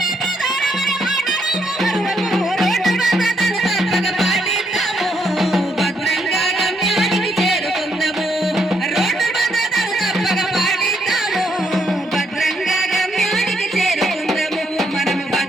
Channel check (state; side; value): normal; both; correlation 0.75